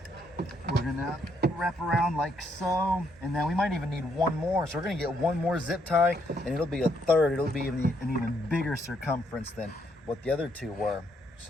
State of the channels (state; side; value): normal; both; correlation 0.73